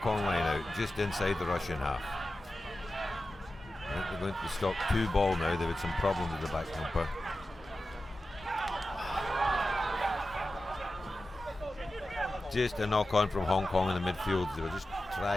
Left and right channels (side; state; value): both; normal; correlation 0.93